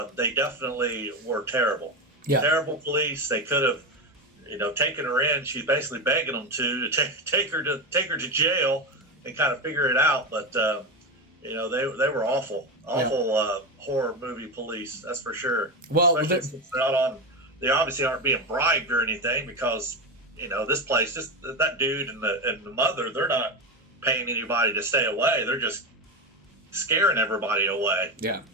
they definitely were terrible. Yeah. Terrible police. They could have, taken her in. She's basically begging them to take her to jail and kind of figure it out. But they were awful horror movie police. That's for sure. Well, especially since they're not on. They obviously aren't being bribed or anything because this place, just that dude and the mother, they're not paying anybody to stay away. They're just scaring everybody away. Yeah.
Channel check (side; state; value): both; normal; correlation 0.16